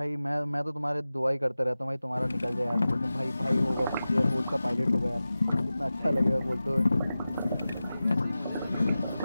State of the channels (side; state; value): both; inverted; correlation -0.95